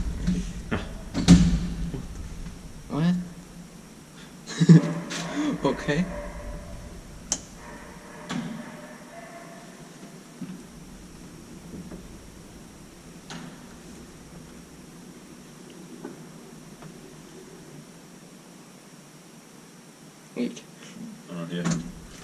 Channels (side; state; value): both; identical; correlation 1.00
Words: What? Okay. Wait. Yeah.